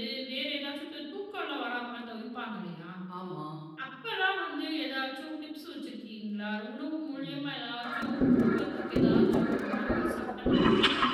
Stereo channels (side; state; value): both; identical; correlation 1.00